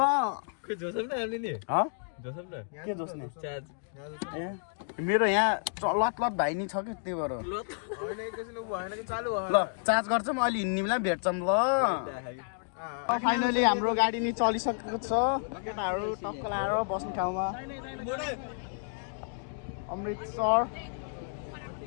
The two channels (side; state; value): right; silent; digital silence